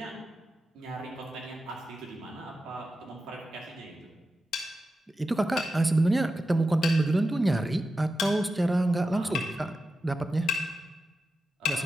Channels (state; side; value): normal; both; correlation 0.91